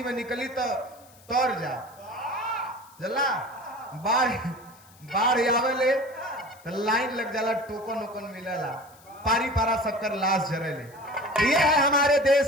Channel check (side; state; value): left; noise; hiss, 26 dB below the sound